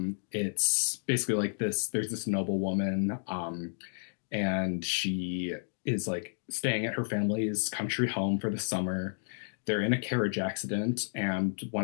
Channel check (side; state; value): right; silent; digital silence